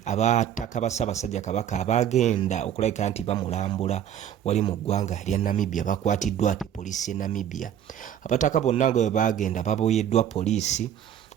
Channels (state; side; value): quieter; left; 9.9 dB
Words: abataka ba Ssaabasajja Kabaka abagenda okulabika nti bamulambula wali mu ggwanga lya Namibia bakwatiddwa ate poliisi ya Namibia. Abataka bonna nga bagenda baboyeddwa poliisi